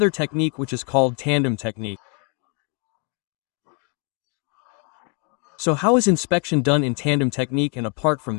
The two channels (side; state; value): right; quieter; 36.5 dB